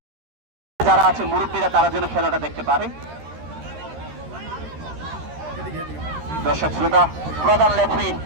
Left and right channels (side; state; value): left; late; 13 ms